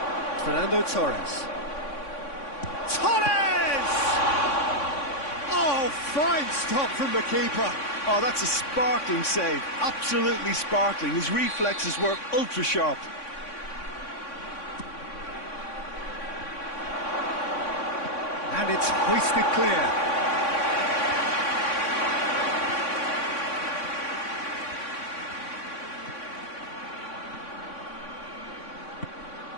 Fernando Torres. Torres! Oh, fine stop from the keeper. Oh, that's a sparkling save. Absolutely sparkling. His reflexes work ultra sharp. And it's hoisted clear.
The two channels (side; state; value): right; late; 3.6 ms